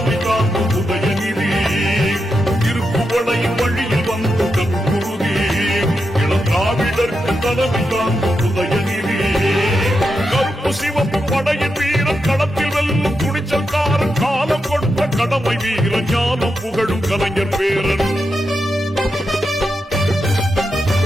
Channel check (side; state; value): both; normal; correlation 0.87